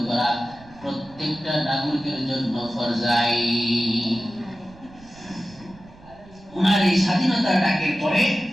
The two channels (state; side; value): noise; right; rumble, 23 dB below the sound